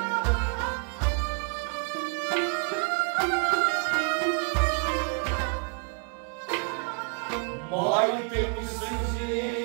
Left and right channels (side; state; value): left; quieter; 39.7 dB